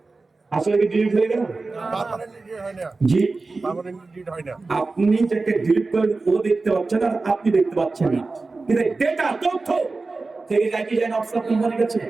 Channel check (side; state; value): left; quieter; 3.7 dB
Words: আসলে কি ডিলিট হয়ে গেল? জি, আপনি যাকে ডিলিট করেন ও দেখতে পাচ্ছেন আর আপনি দেখতে পাচ্ছেন না, কিন্তু ডেটা তথ্য থেকে যায় কি যায় না অফিসার কোম্পানির কাছে,